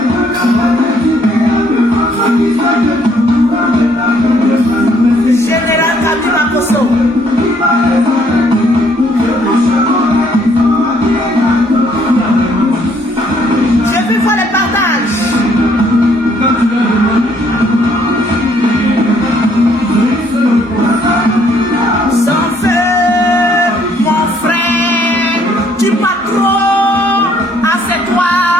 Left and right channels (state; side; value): normal; both; correlation 0.66